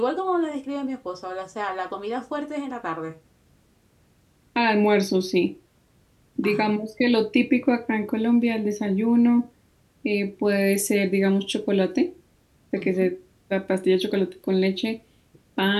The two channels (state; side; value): identical; both; correlation 1.00